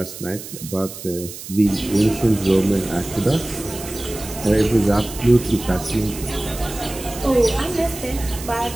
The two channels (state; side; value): noise; right; hiss, 12 dB below the sound